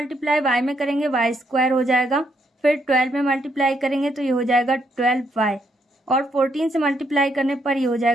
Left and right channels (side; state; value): both; normal; correlation 0.75